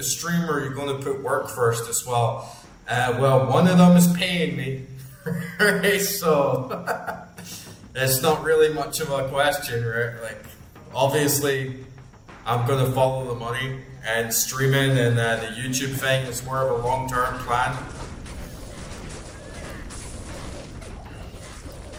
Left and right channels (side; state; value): both; identical; correlation 1.00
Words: stream, or are you gonna put work first as well? Well, one of them is paying me, right? So it's not really much of a question, right? Like, obviously, I'm gonna follow the money, and streaming and the YouTube thing is more of a long-term plan.